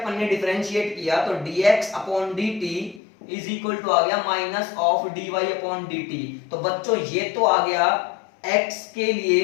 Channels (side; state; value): right; drops out; at 3.0 s